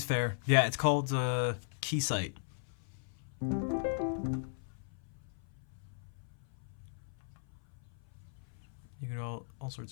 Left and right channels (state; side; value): silent; right; 53 dB below the other